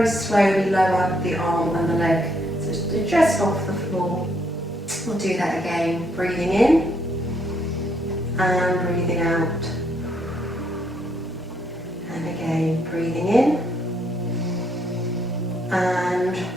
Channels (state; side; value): normal; both; correlation 0.72